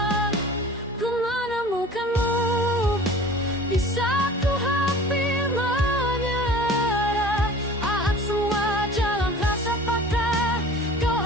Ku menemukanmu di saat ku hampir menyerah. Saat semua jalan terasa patah, kau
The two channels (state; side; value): normal; both; correlation 0.43